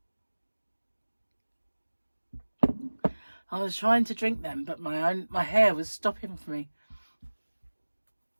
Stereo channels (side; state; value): both; inverted; correlation -1.00